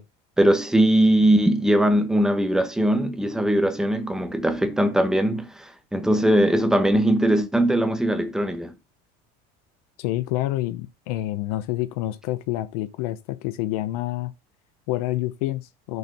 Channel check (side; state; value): both; normal; correlation 0.79